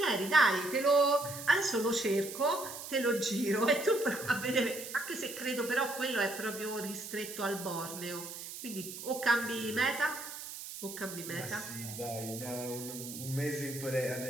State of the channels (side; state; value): right; noise; hiss, 10 dB below the sound